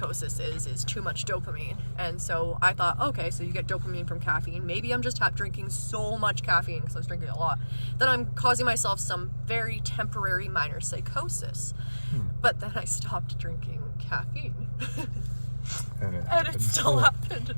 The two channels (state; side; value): inverted; both; correlation -1.00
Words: is too much dopamine. And so I thought, okay, so you get dopamine from caffeine. Maybe I'm just drinking so much caffeine because I was drinking a lot that I'm causing myself some very temporary minor psychosis. But then I stopped drinking caffeine. and it still happened.